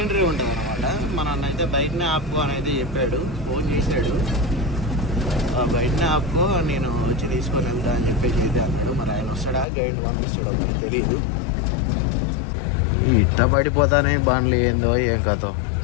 ఉంటుంది అనమాట. మన అన్నైతే బయటనే ఆపుకో అని అయితే చెప్పాడు, ఫోన్ చేశాడు. బయటనే ఆపుకో, నేను వచ్చి తీసుకొని వెళ్తా అని చెప్పేసి అయితే అన్నాడు. మరి ఆయన వస్తాడా, గైడ్ పంపిస్తాడో తెలీదు. ఇట్ట పడిపోతానే బండ్లు ఏందో ఏం కథో.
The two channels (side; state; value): right; drops out; at 9.7 s